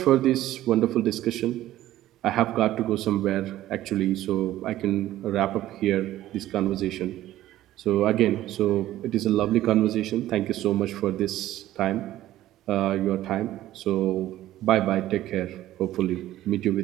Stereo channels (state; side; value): quieter; left; 14.2 dB